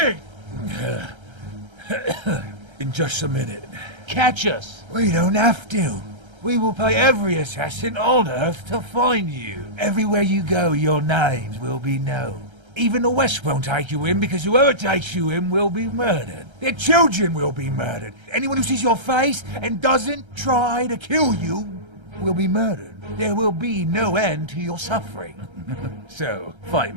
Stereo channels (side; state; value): left; late; 1.3 ms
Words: In just a minute. Catch us! We don't have to. We will pay every assassin on Earth to find you. Everywhere you go, your names will be known. Even the West won't take you in because whoever takes you in will be murdered. Their children will be murdered. Anyone who sees your face and doesn't try to kill you will be murdered. There will be no end to your suffering. So, fight